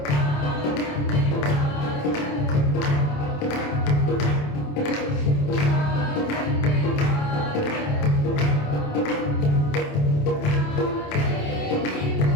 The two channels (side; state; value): right; late; 28 ms